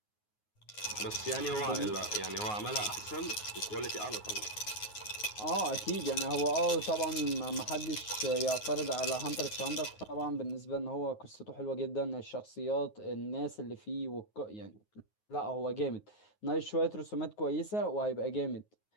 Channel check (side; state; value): right; late; 9.5 ms